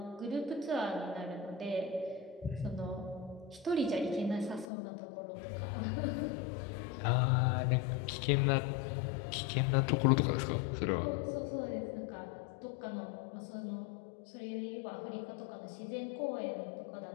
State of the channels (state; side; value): drops out; right; at 4.7 s